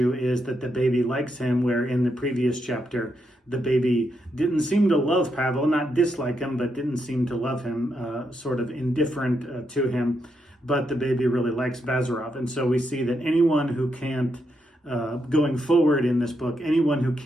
is that the baby likes him, where in the previous chapter, the baby didn't seem to love Pavel, not dislike him, but didn't seem to love him, sort of indifferent to him. But the baby really likes Bazarov. And so we see that anyone who can't, going forward in this book, anyone who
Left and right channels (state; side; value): normal; both; correlation 0.81